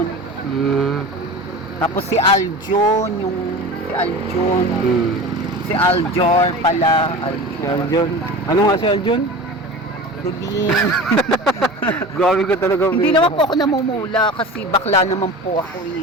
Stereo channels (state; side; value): normal; both; correlation 0.33